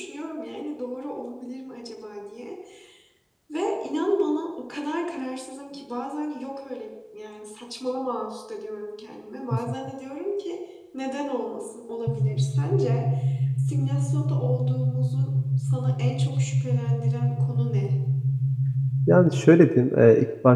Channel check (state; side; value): identical; both; correlation 1.00